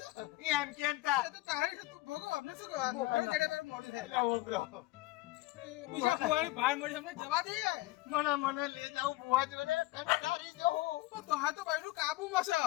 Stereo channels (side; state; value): right; quieter; 19.1 dB